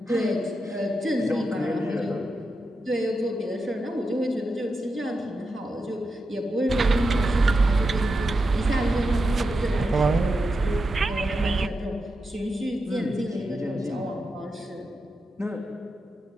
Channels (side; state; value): both; normal; correlation 0.88